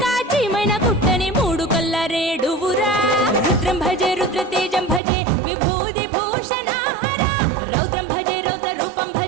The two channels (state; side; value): drops out; left; at 5.0 s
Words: కాచిమైన కుట్టని మూడు కల్ల రేడువురా रुद्रं भजे रुद्रतेजं भजे विभूति भूषणहरा रौद्रं भजे रौद्र रूपं